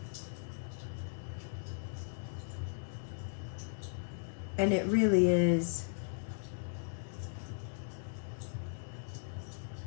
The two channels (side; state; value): right; silent; 53 dB below the other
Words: And it really is